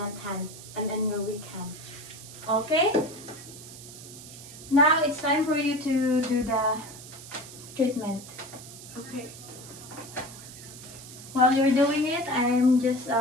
hand and then your weak hand. Okay? Now it's time for you to do the treatment. Okay. While you're doing it, I'm just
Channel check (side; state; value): right; noise; hiss, 15 dB below the sound